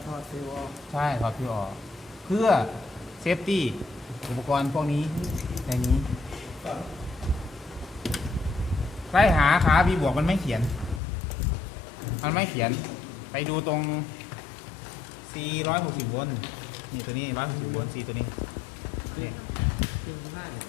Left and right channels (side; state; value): right; drops out; at 11.0 s